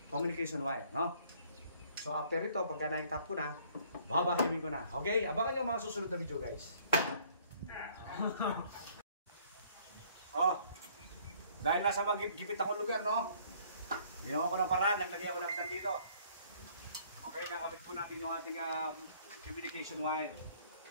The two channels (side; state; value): both; inverted; correlation -0.60